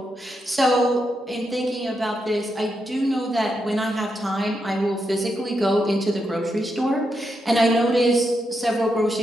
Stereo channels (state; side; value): normal; both; correlation 0.83